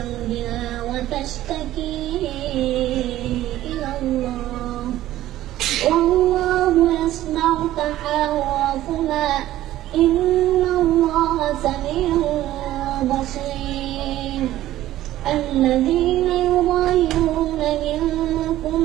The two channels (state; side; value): quieter; left; 14.3 dB